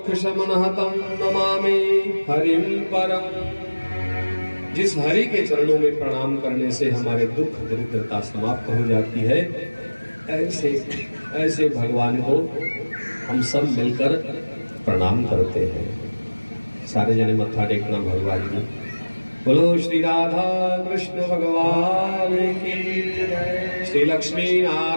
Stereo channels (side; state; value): both; inverted; correlation -1.00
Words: शमनः तं नमामि हरिं परम। जिस हरि के चरणों में प्रणाम करने से हमारे दुख दरिद्रता समाप्त हो जाती है, ऐसे ऐसे भगवान को हम सब मिलकर प्रणाम करते हैं। सारे जने मत्था टेकना भगवान जी। बोलो श्री राधा कृष्ण भगवान की जय, श्री लक्ष्मी